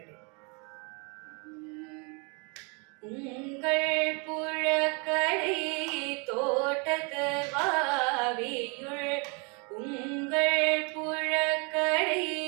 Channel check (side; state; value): left; quieter; 33.1 dB